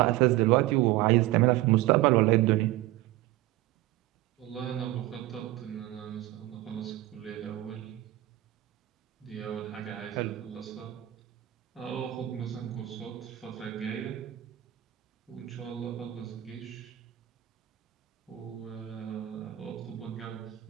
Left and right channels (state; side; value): quieter; left; 16.1 dB